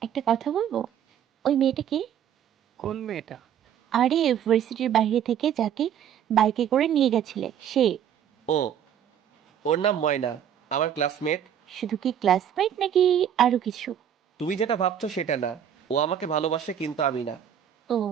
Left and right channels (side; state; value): left; quieter; 9.4 dB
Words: একটা কথা বলবো? ওই মেয়েটা কি? কোন মেয়েটা? আরে ইউনিভার্সিটির বাইরে থেকে যাকে বাইকে করে নিয়ে গেছিলে সে। ও, ওর নাম ময়না, আমার ক্লাসমেট। শুধু কি ক্লাসমেট নাকি আরো কিছু? তুমি যেটা ভাবছো সেটা না, ও আমাকে ভালোবাসে কিন্তু আমি না। ও।